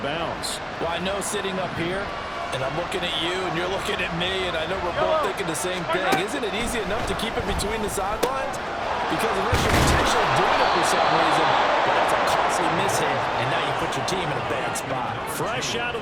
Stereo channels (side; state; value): both; identical; correlation 1.00